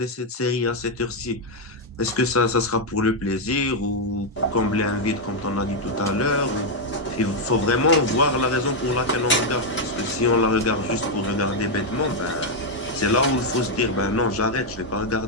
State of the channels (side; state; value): both; normal; correlation 0.00